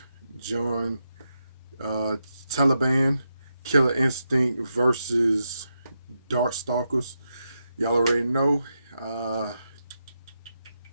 Jon Taliban. Killer Instinct versus Darkstalkers. Y'all already know.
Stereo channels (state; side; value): inverted; both; correlation -0.86